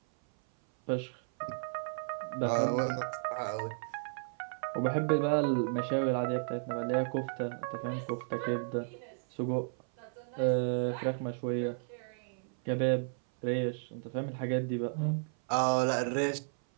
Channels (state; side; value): silent; left; 55 dB below the other